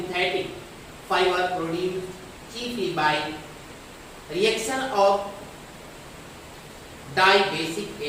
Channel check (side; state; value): both; identical; correlation 1.00